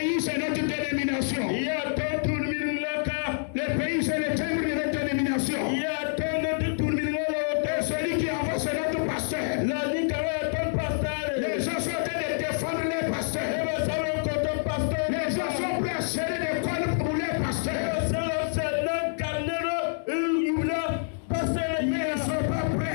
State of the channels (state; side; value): silent; right; 60 dB below the other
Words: c'est notre dénomination. Le pays, c'est le timbre de notre dénomination. Et celui qui avance, c'est notre pasteur. Les gens sont en train de défendre les pasteurs. Les gens sont prêts à serrer des cordes pour les pasteurs. Mais ils ne sont pas